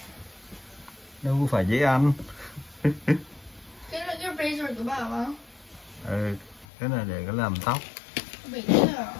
Đâu có phải dễ ăn. Cái là cái razor của bà không? Ừ, cái này để có làm tóc. Bị đứt à?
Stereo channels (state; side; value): drops out; right; at 6.7 s